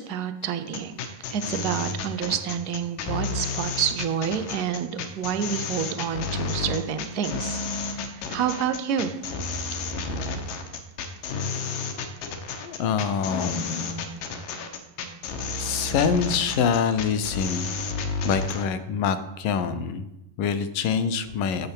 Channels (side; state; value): right; late; 11 ms